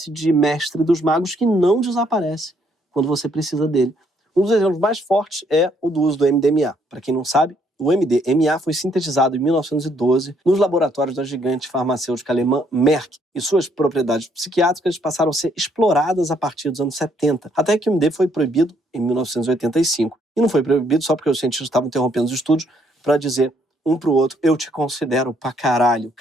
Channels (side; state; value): both; normal; correlation 0.69